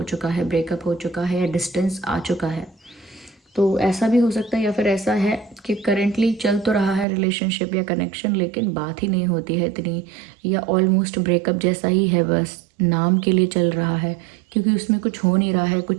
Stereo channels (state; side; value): drops out; left; at 7.1 s